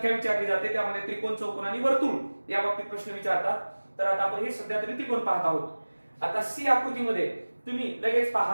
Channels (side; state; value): both; inverted; correlation -1.00